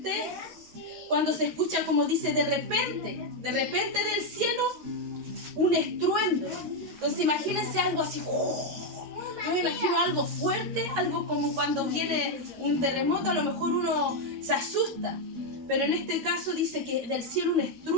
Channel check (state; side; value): late; left; 13 ms